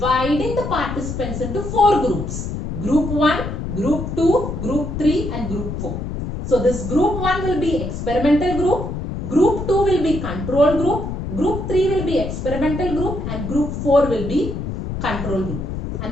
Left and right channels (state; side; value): noise; left; rumble, 5 dB below the sound